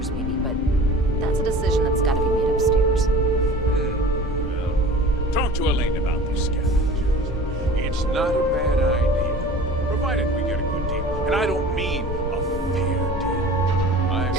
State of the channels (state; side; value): normal; both; correlation 0.41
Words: maybe, but that's a decision that's got to be made upstairs. Well, talk to Elaine about these scavengers. It's not a bad idea, provided we get a good deal. And I don't mean a fair deal. I